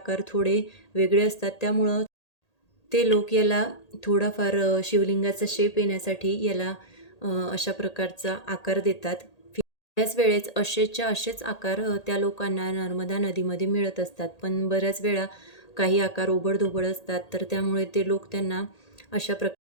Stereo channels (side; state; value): right; late; 1.8 ms